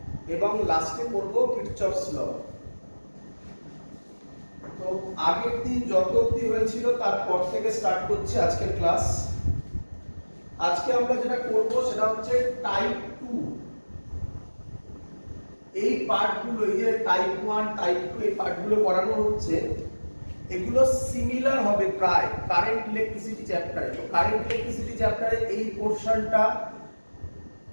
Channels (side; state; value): both; inverted; correlation -1.00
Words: এবং লাস্টে করব কিরচফস ল। তো আগের দিন যত অবধি হয়েছিল তারপর থেকে স্টার্ট করছে আজকের ক্লাস। আজকে আমরা যেটা করব সেটা হচ্ছে টাইপ 2। এই পার্টগুলো, এই যে টাইপ 1 টাইপ 2 এই পার্টগুলো পড়ানো হচ্ছে, এগুলো সিমিলার হবে প্রায় কারেন্ট ইলেকট্রিসিটি চ্যাপ্টারে। তো কারেন্ট ইলেকট্রিসিটি চ্যাপ্টারে এই পোরশনটা